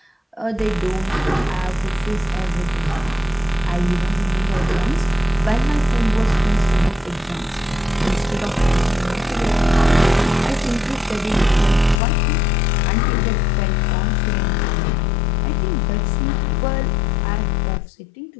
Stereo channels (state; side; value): drops out; right; at 12.0 s